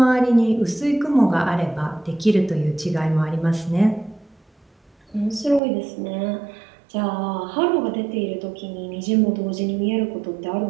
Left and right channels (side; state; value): left; drops out; at 5.6 s